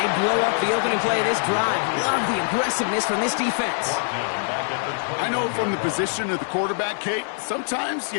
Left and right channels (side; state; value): right; silent; 61 dB below the other